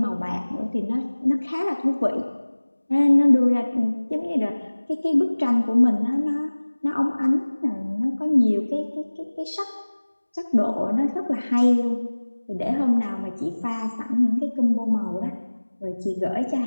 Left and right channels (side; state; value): both; inverted; correlation -1.00